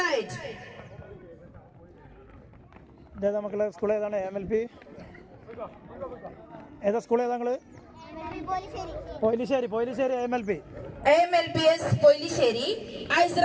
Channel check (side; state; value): both; identical; correlation 1.00